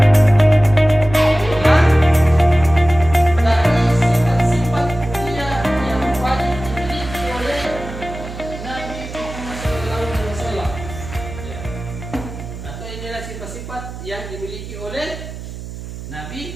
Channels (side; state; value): right; noise; hum, 11 dB below the sound